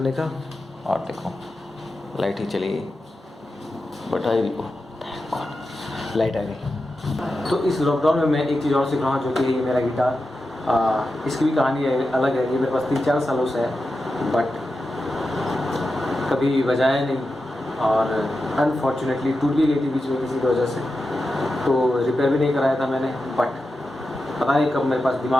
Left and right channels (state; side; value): normal; both; correlation 0.90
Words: का और देखो लाइट ही चली गई, बट आई लाइट आ गई। तो इस लॉकडाउन में मैं एक चीज़ और सीख रहा हूँ जो कि मेरा गिटार, इसकी भी कहानी है, अलग है। ये मेरे पास 3-4 सालों से है बट कभी बजाया नहीं और अनफॉर्चुनेटली टूट भी गई थी बीच में किसी की वजह से, तो रिपेयर भी नहीं कराया था मैंने। बट पता नहीं कब मेरे पास